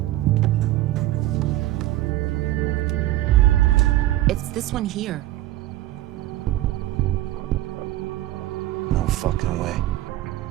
It's this one here. No fucking way.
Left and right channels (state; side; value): quieter; left; 15.4 dB